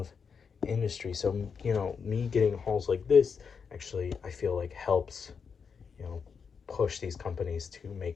industry. So, you know, me getting hauls like this actually, I feel like helps, you know, push these companies to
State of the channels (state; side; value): quieter; right; 6.1 dB